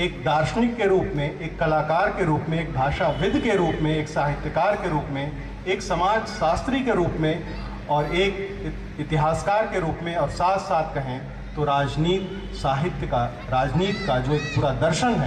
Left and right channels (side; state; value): both; identical; correlation 1.00